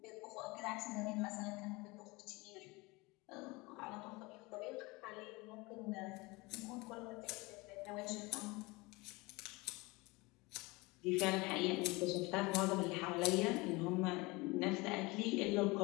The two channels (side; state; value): right; quieter; 24.2 dB